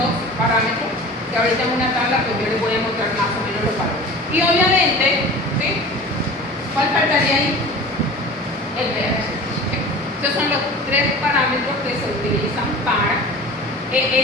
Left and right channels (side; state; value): both; normal; correlation 0.38